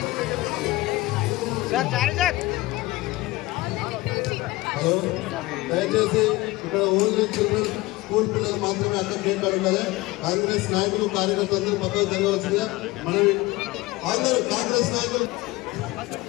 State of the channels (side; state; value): right; quieter; 20.1 dB